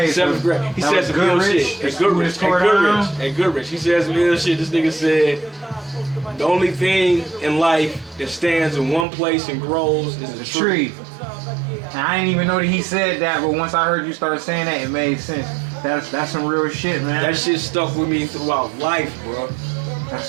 7th grade. He said some ill shit. At Goodrich. He said some ill shit. This nigga said, the only thing in life that stands in one place and grows is a tree. And I didn't even know that he said that, but once I heard you start saying that, it made sense. That's some real shit, man. That shit stuck with me throughout life, bro. That's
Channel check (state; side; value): drops out; left; at 9.1 s